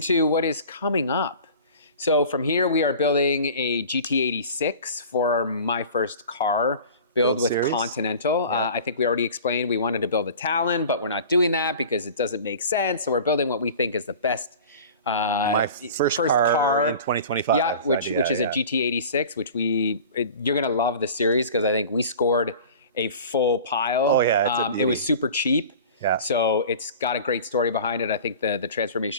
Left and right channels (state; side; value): inverted; both; correlation -0.40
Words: what is coming up. So from here, we are building a GT86 for my first car build with series? Continental. I think we already explained we wanted to build a Talon, but we're not doing that because it doesn't make sense. So we're building what we think is the best. My first car in 2025. Yeah, which is a GT86, which you're gonna love the series because I think we scored a full pile. Oh yeah, it was super cheap. Yeah. So it's got a great story behind it. I think the